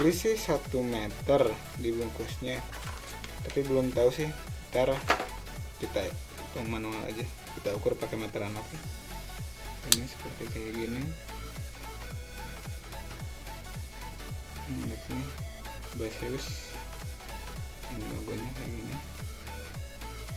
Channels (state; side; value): identical; both; correlation 1.00